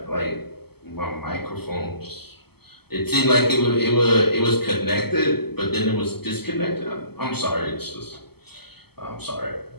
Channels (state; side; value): late; right; 0.96 ms